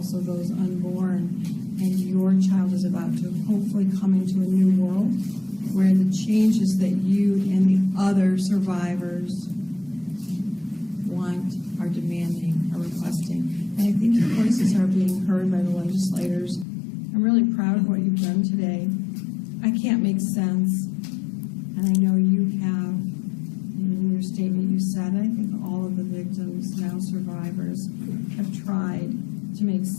those unborn. And your child is about to hopefully come into a new world where the changes that you and the other survivors want, are demanding, are requesting. And I think your voices are being heard by the legislators. I'm really proud of what you've done today. I can't make sense, and I know you have. In your statement you said, I think all of the victims, now survivors, have tried to make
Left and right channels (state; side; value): drops out; right; at 16.7 s